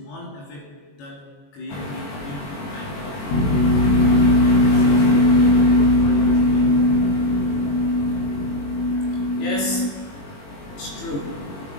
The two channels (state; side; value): late; right; 21 ms